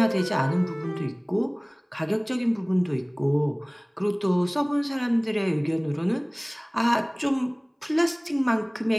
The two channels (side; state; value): both; identical; correlation 1.00